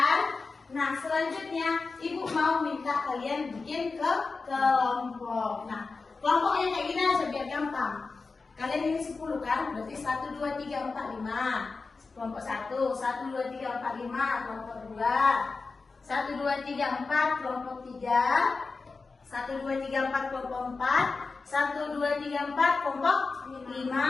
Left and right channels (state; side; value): quieter; right; 4.2 dB